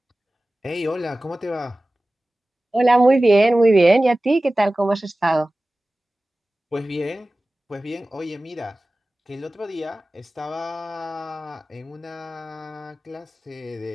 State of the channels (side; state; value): both; normal; correlation 0.97